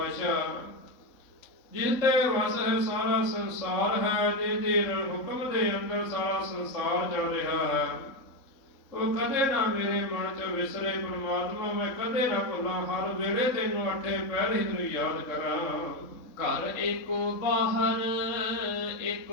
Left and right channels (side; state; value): right; late; 3.6 ms